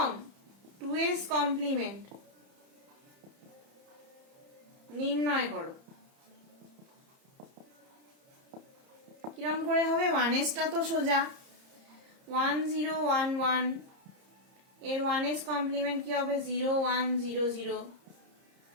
2s কমপ্লিমেন্ট নির্ণয় করো। কিরম করে হবে? 1sটা তো সোজা, 1011 এর 1s কমপ্লিমেন্ট কি হবে? 0100।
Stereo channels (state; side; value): late; left; 30 ms